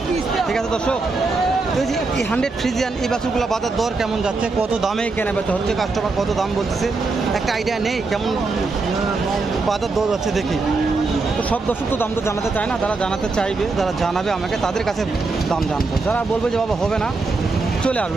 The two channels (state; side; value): quieter; left; 3.8 dB